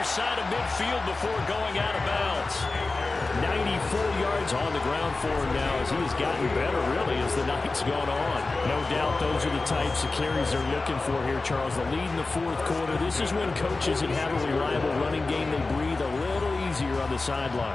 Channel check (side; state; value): right; quieter; 3.5 dB